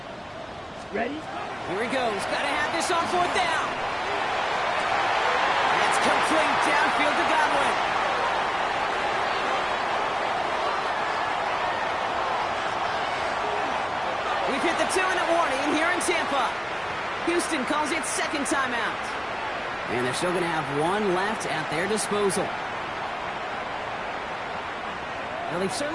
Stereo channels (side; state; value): both; identical; correlation 1.00